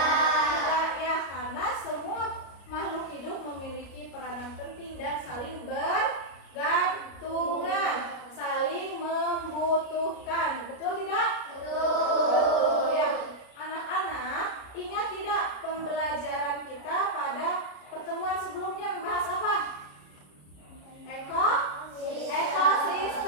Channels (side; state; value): right; late; 33 ms